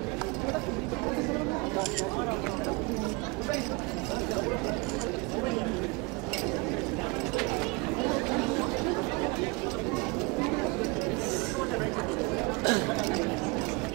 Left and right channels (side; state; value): left; quieter; 26.9 dB